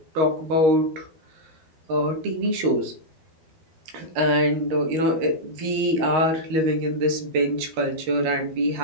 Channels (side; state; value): left; late; 13 ms